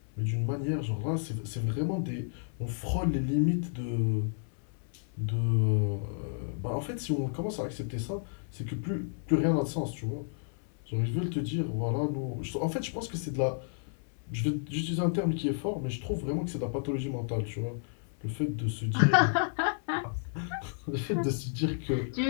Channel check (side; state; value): right; silent; 57 dB below the other